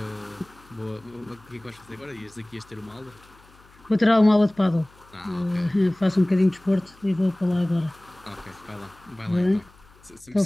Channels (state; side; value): noise; left; hum, 27 dB below the sound